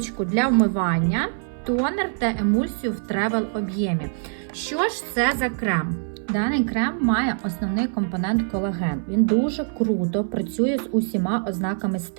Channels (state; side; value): silent; left; 60 dB below the other